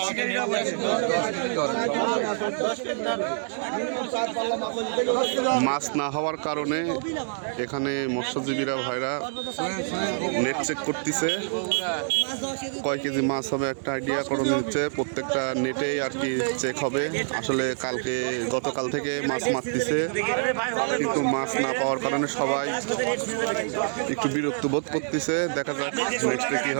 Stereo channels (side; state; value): left; silent; digital silence